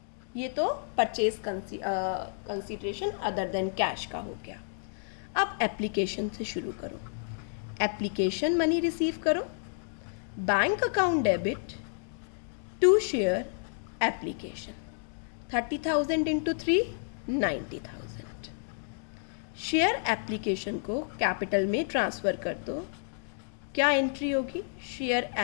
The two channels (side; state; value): right; silent; digital silence